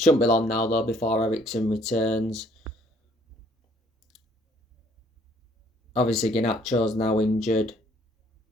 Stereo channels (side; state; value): both; normal; correlation 0.62